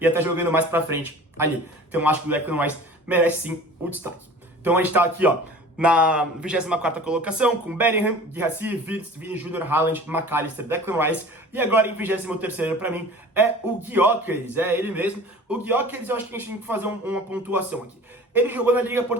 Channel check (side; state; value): both; normal; correlation 0.42